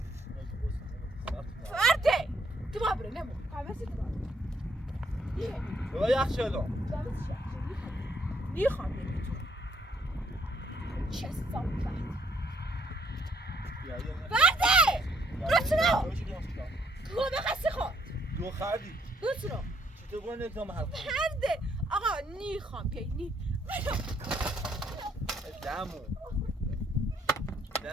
فرده تو باید بره نمو قوسی تو باید بابا یخ شلو نیخوام بری تو چه صافت فرده برات سنا گوه بخستی خود دو خردی برات سنا چطور گونه نکنم حرف فرده آقا نیخوام بیایی دمو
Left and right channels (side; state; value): both; normal; correlation 0.68